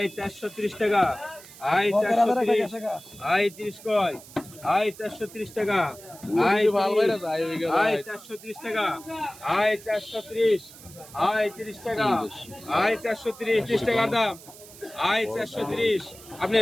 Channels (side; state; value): right; noise; hiss, 19 dB below the sound